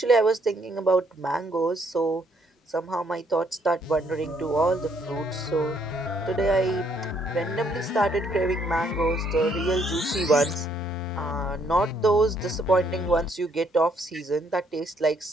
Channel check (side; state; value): both; normal; correlation 0.69